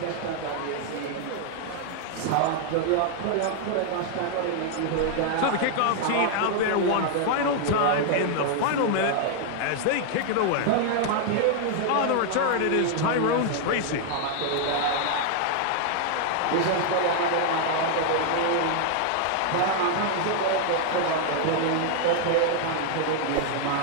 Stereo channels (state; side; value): different; both; correlation 0.00